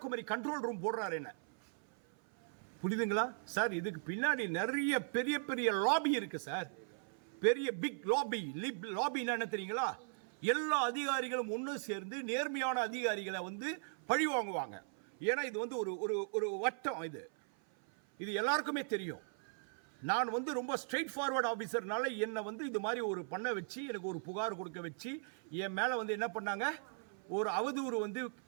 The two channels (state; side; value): silent; left; 52 dB below the other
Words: control room போடுறாரு. என்ன புரியுதுங்களா சார்? இதுக்கு பின்னாடி நிறைய பெரிய பெரிய லாபி இருக்கு சார். பெரிய பிக் லாபி. லாபின்னா என்ன தெரியுங்களா? எல்லா அதிகாரிகளும் ஒன்று சேர்ந்து நேர்மையான அதிகாரிகளை வந்து பழி வாங்குவாங்க. ஏன்னா இது வந்து ஒரு வட்டம். இது எல்லாருக்குமே தெரியும். நான் வந்து ரொம்ப ஸ்ட்ரெயிட் ஃபார்வர்ட் ஆஃபீஸர்னால என்னை வந்து இது மாதிரி ஒரு பண்ண வச்சு எனக்கு ஒரு புகார் கொடுக்க வச்சு என் மேலே வந்து என்ன பண்ணாங்க, ஒரு அவதூறு வந்து